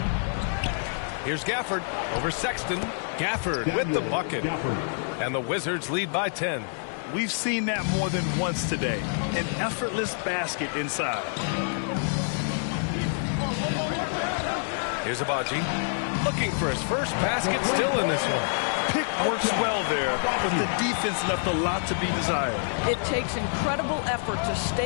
Here's Gafford over Sexton. Gafford with the bucket. And the Wizards lead by 10. We've seen that more than once today. An effortless basket inside. Here's Abaji. Looking for his first basket, still in this one. Pick works well there, but the defense left a lot to be desired. It takes incredible effort to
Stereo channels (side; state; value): right; silent; digital silence